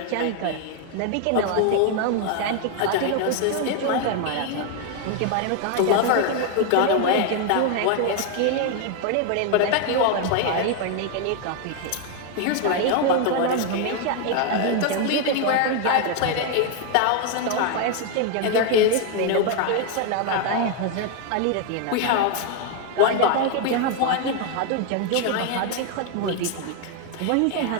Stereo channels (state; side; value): different; both; correlation 0.01